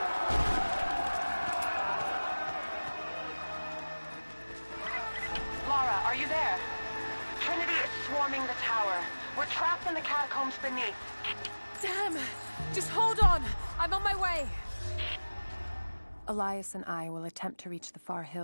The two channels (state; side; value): inverted; both; correlation -1.00